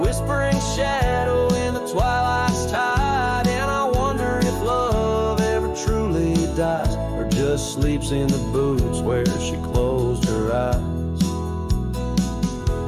sleeps in the boots where she closed her eyes.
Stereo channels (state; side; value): identical; both; correlation 1.00